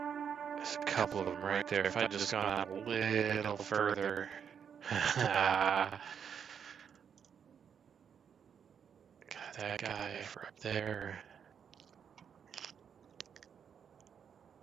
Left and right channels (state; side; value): quieter; left; 7.6 dB